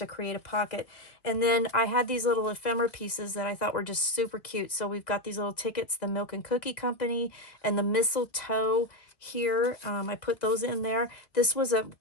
create a pocket. And then I had these little ephemera pieces that I thought were just super cute. So we've got these little tickets, the Milk and Cookie Company and the mistletoe here. I put those in there. This was a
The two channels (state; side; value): late; right; 1.6 ms